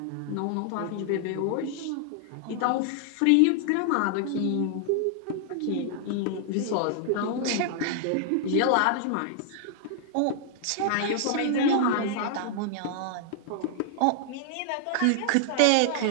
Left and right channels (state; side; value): different; both; correlation 0.00